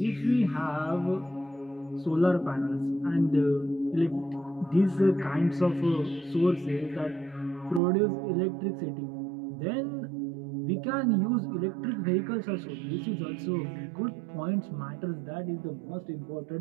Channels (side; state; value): left; drops out; at 7.8 s